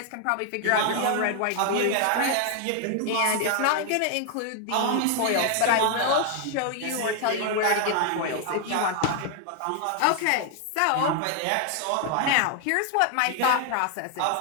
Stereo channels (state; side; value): different; both; correlation 0.00